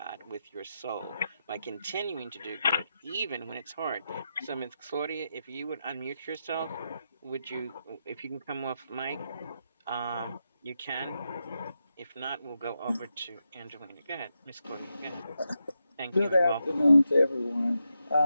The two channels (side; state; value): both; inverted; correlation -0.86